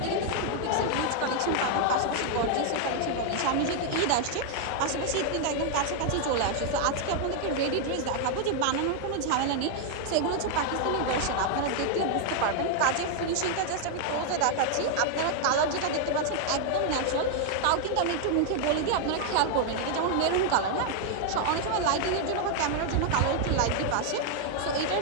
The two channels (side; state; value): both; different; correlation 0.00